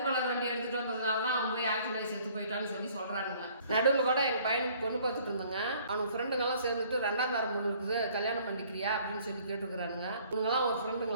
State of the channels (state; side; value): inverted; both; correlation -0.57